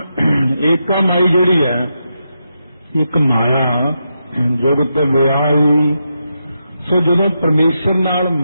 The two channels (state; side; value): inverted; both; correlation -0.85